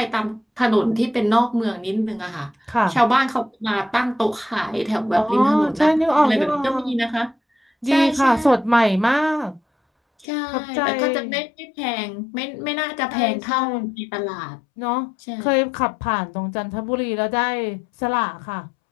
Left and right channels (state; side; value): drops out; right; at 10.2 s